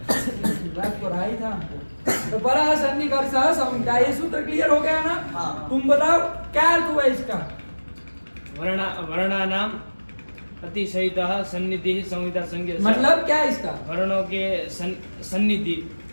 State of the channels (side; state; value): both; inverted; correlation -1.00